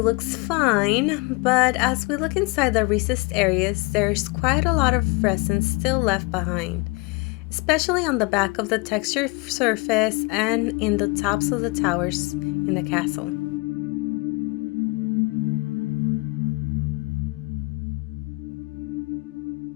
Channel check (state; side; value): quieter; right; 27.2 dB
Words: looks fine, but as we look inside the recessed areas, there's quite a lot of resin still left behind, especially on the back of the textured surface and in the tops of the towers in the castle.